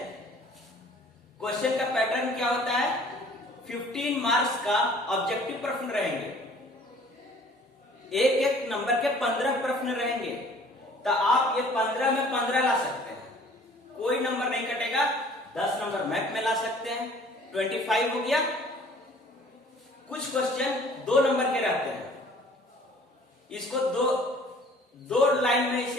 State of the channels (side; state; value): both; normal; correlation 0.52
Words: क्वेश्चन का पैटर्न क्या होता है? 15 मार्क्स का ऑब्जेक्टिव प्रश्न रहेंगे, एक एक नंबर के 15 प्रश्न रहेंगे। तो आप ये 15 में 15 ला सकते हैं, कोई नंबर नहीं कटेगा। 10 नंबर मैथ में ला सकते हैं, 25 हो गया। कुछ क्वेश्चन 2 नंबर के रहते हैं, इसको दो लाइन में